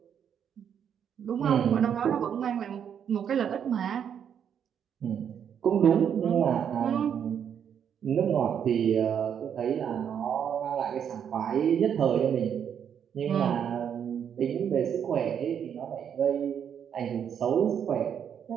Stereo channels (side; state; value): left; quieter; 8.3 dB